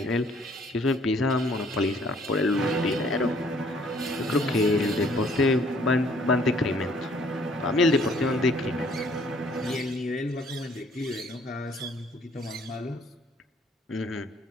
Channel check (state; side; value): normal; both; correlation 0.61